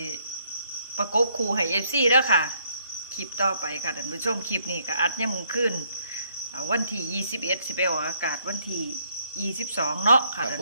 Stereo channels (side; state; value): both; inverted; correlation -0.70